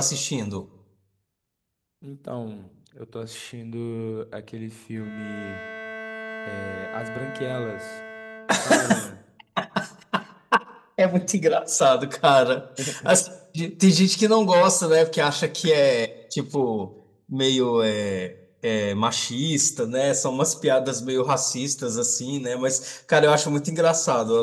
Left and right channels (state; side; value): identical; both; correlation 1.00